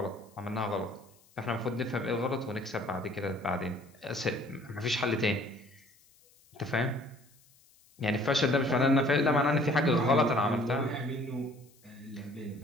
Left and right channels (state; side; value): noise; left; hiss, 30 dB below the sound